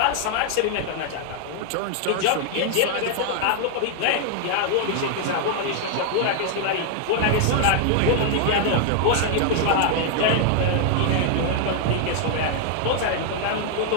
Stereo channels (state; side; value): different; both; correlation 0.00